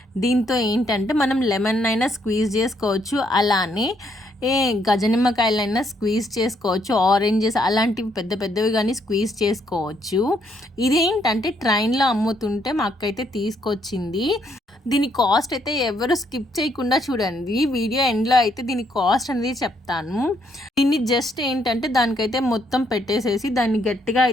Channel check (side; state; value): both; normal; correlation 0.72